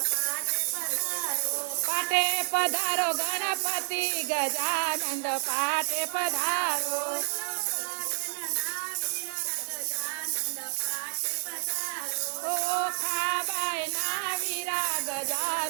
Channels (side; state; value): left; silent; digital silence